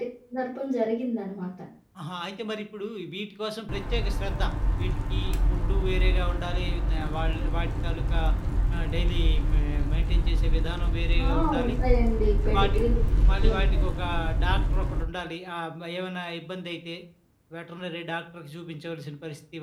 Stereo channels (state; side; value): identical; both; correlation 1.00